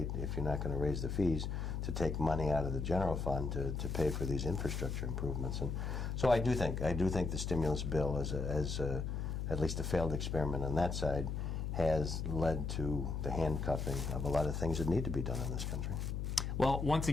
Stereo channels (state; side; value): noise; left; hum, 2 dB below the sound